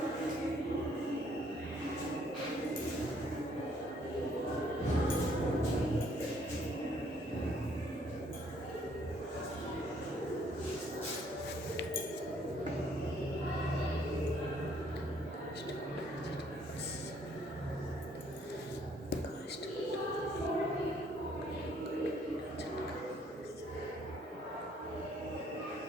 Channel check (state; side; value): normal; both; correlation 0.64